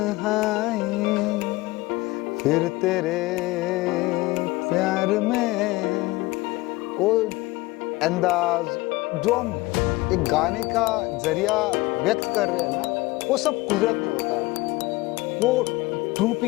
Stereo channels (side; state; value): right; quieter; 21.0 dB